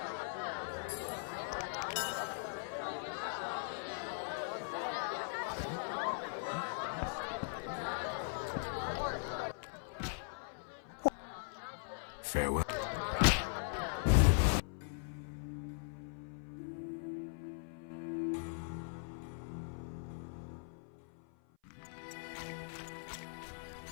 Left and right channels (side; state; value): right; silent; 51 dB below the other